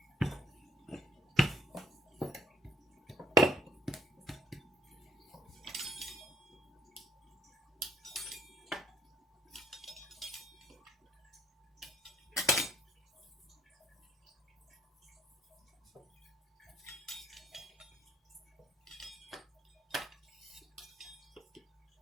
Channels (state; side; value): normal; both; correlation 0.64